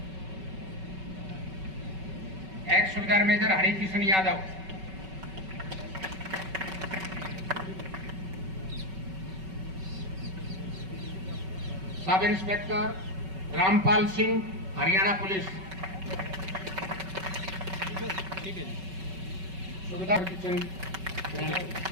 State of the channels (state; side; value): late; left; 5.3 ms